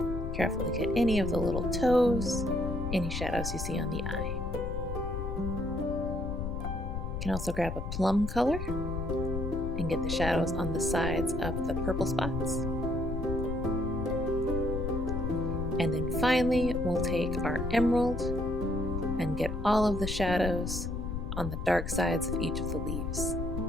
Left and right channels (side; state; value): left; noise; rumble, 4 dB below the sound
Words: Carefully get any of the little toes, any shadows you see on the eye. You can also grab a plum color and get the shadows on the sides of the purple spots. And then finally, we'll take our emerald and get all of the shadows on the dark sides of each of the leaves.